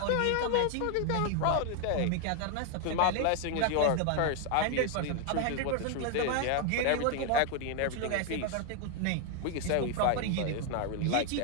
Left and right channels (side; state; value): both; different; correlation 0.01